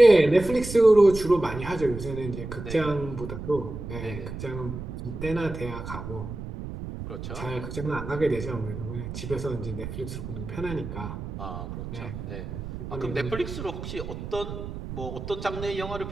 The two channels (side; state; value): right; noise; rumble, 8 dB below the sound